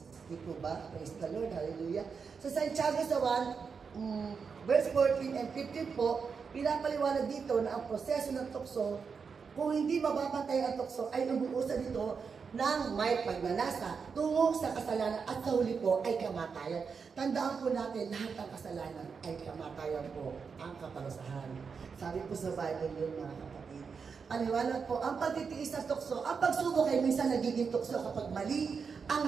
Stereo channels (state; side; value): quieter; left; 5.7 dB